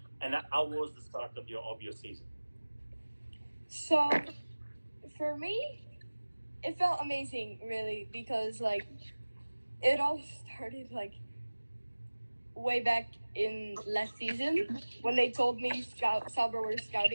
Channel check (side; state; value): both; inverted; correlation -1.00